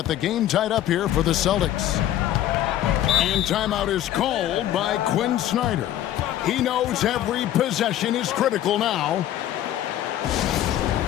the game tied up here for the Celtics. And timeout is called by Quinn Snyder. He knows every possession is critical now.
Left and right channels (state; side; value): quieter; right; 12.3 dB